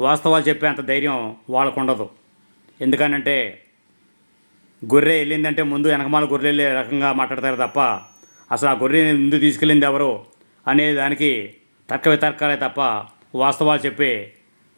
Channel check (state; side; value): inverted; both; correlation -1.00